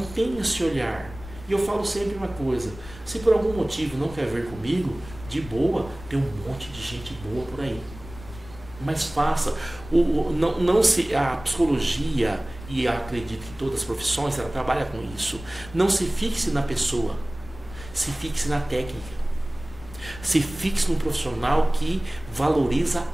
esse olhar. E eu falo sempre uma coisa, se por algum motivo não quer ver comigo, de boa, tem um monte de gente boa por aí. Mas faça. A psicologia, e acredito que todas as profissões ela trabalha com isso. Não se fixe na pessoa, se fixe na técnica. Se fixe num profissional que valoriza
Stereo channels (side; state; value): left; noise; rumble, 16 dB below the sound